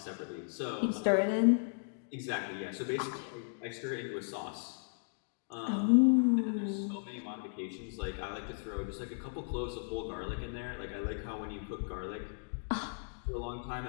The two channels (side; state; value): right; silent; digital silence